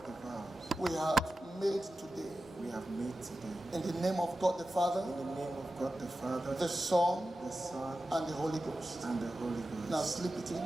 We have made today. In the name of God the Father. The Son. And the Holy Ghost. Now slip it in.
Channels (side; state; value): both; normal; correlation 0.93